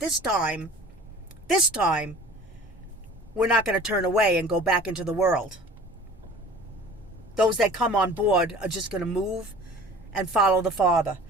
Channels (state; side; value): normal; both; correlation 0.44